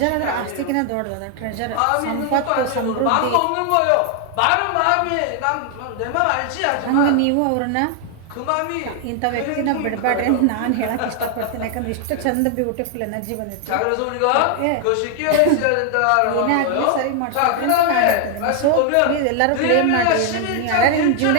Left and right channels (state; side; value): different; both; correlation 0.00